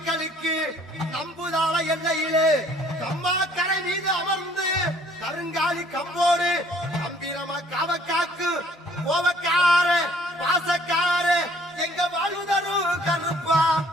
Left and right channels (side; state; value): both; normal; correlation 0.59